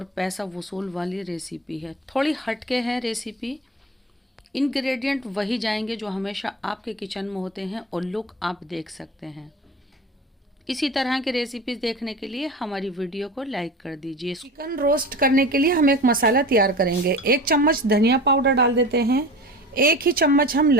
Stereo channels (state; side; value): normal; both; correlation 0.35